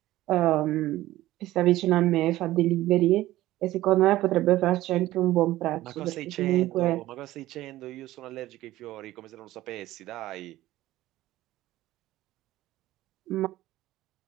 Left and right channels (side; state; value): left; quieter; 15.8 dB